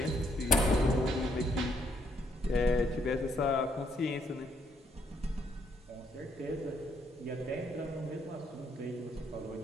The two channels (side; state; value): both; normal; correlation 0.72